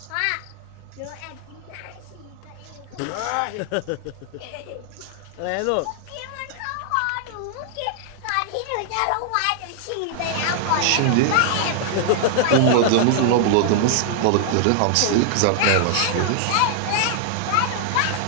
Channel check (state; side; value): different; both; correlation -0.01